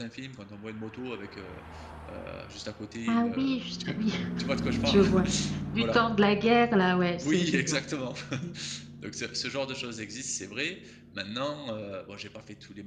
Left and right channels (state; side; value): identical; both; correlation 1.00